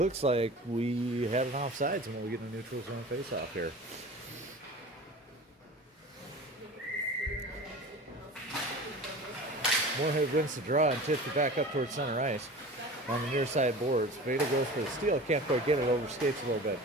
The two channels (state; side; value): normal; both; correlation 0.37